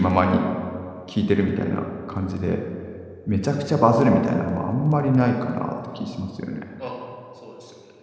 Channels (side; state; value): both; identical; correlation 1.00